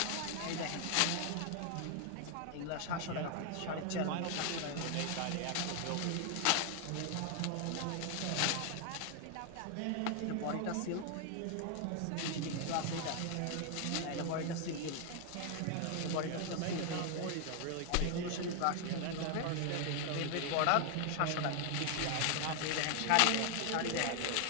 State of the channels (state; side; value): different; both; correlation 0.00